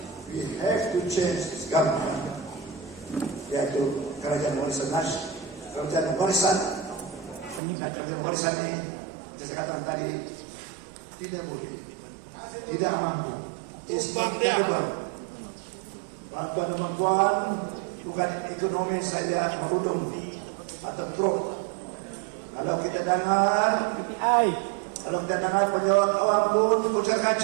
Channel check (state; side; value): drops out; left; at 7.6 s